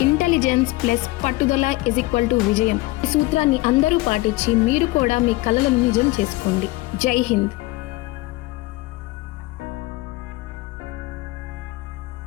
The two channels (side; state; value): right; quieter; 20.6 dB